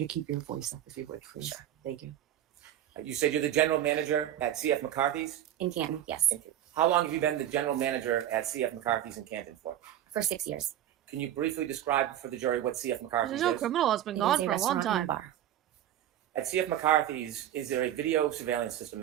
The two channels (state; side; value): quieter; left; 11.6 dB